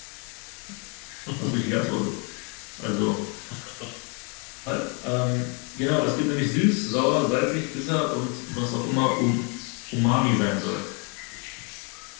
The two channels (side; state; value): right; quieter; 35.2 dB